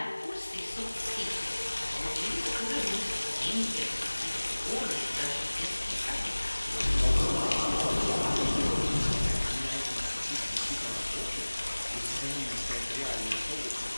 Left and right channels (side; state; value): both; inverted; correlation -1.00